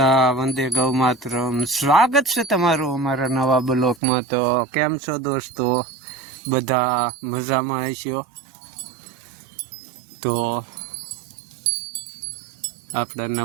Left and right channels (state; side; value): drops out; left; at 4.0 s